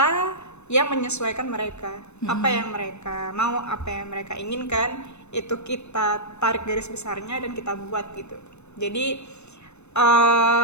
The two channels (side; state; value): right; late; 0.81 ms